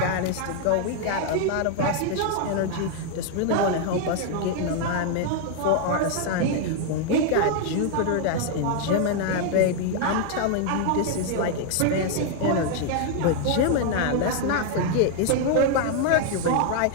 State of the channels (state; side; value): different; both; correlation 0.00